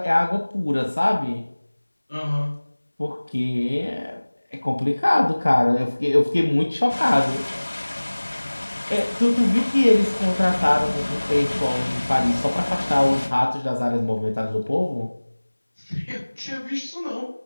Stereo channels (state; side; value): inverted; both; correlation -1.00